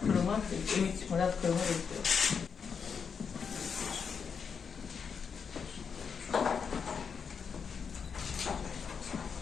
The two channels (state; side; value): quieter; right; 6.3 dB